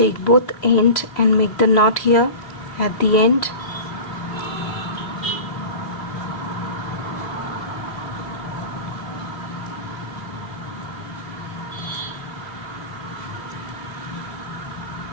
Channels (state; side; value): late; right; 2.6 ms